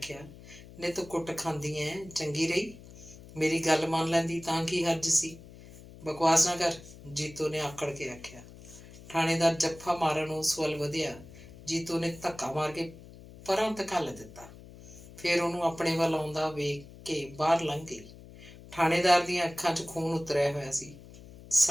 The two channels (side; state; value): left; noise; hum, 18 dB below the sound